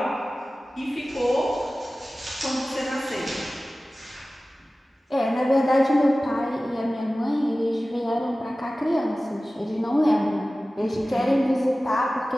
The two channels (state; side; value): normal; both; correlation 0.97